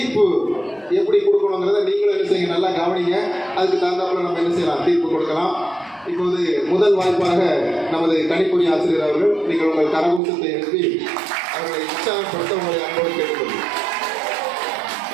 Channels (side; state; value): left; drops out; at 10.2 s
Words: எப்படி கொடுக்கணுங்கிறத நீங்களும் என்ன செய்யுங்க, நல்லா கவனிங்க. அதுக்கு தகுந்தாப்புல நம்ம என்ன செய்யலாம், தீர்ப்பு கொடுக்கலாம். இப்போது முதல் வாய்ப்பாக நமது கணிப்பொறி ஆசிரியர் அவர்கள், நீங்கள் உங்கள் கரகூசத்தை எழுப்பி அவர்களை உற்சாகப்படுத்த உங்களை அன்போடு கேட்டுக்கொள்ளுங்கள்.